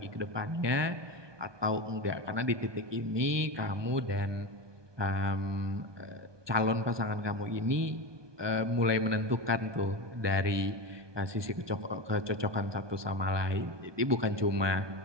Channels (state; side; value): late; left; 1.2 ms